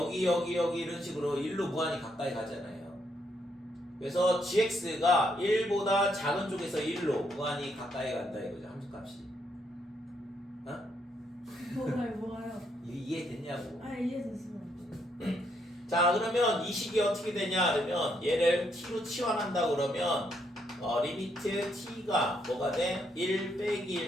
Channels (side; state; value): both; normal; correlation 0.75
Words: 이런 식으로 1로 무한히 가까이 가잖아요. 그래서 gx가 1보다 작은 쪽에서 1로 무한히 가까이 간다 이거죠. 함수 값이. 뭐가요? 이해됐냐고. 이해됐어요. 자, 그러면 이 식이 어떻게 되냐 그러면 얘를 t로 치환한다 그러면 리미트 t가 뭐가 돼? 1 빼기